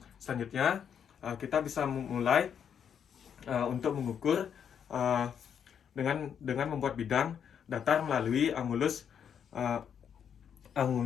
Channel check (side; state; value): right; quieter; 8.0 dB